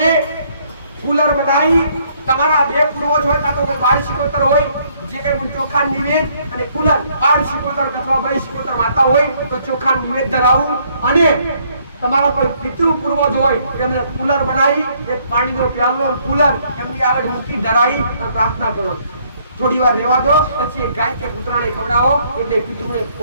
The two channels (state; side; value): inverted; both; correlation -0.67